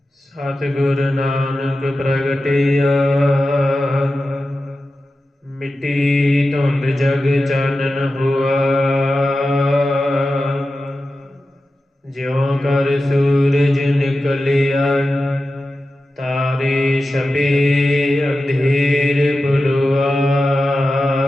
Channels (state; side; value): normal; both; correlation 0.93